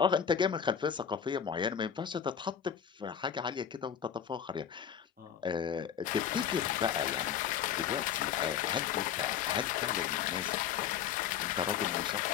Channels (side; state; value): right; quieter; 8.4 dB